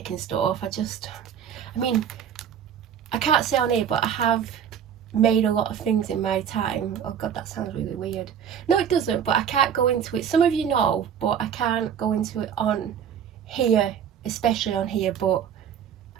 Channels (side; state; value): left; quieter; 8.4 dB